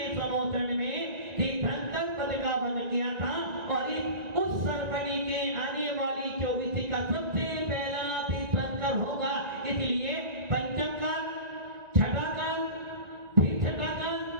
समोषण में तीर्थंकर पद का वन किया था। और उस सरपणी के आने वाली 24 का सबसे पहला तीर्थंकर होगा। इसलिए पंचम काल, छठा काल, फिर छठा काल,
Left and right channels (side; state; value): left; late; 1.9 ms